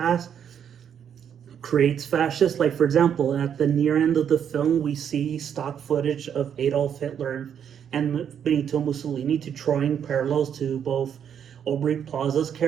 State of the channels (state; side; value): quieter; left; 8.5 dB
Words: creates fascists. Like, for example, at the near end of the film, we see stock footage of Adolf Hitler and Benito Mussolini, to drawing parallels to both Aubrey Plaza's